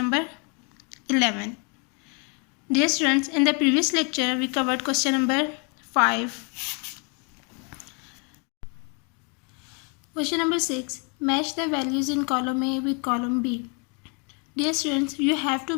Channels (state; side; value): quieter; right; 35.4 dB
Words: 11. Dear students, in the previous lecture we covered question number 5. Question number 6, match the values in column A with column B. Dear students, you have to